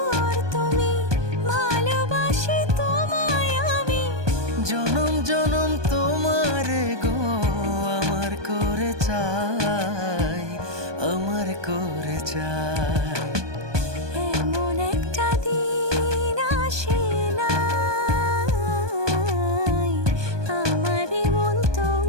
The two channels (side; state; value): left; late; 1.2 ms